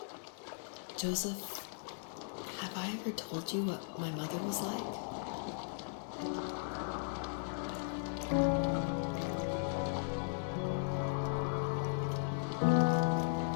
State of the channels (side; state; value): right; silent; digital silence